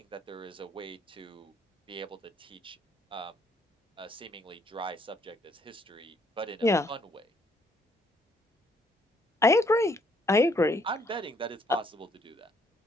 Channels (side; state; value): both; normal; correlation 0.66